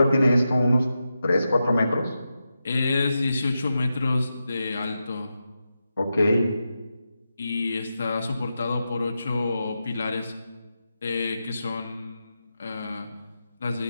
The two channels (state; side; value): inverted; both; correlation -0.89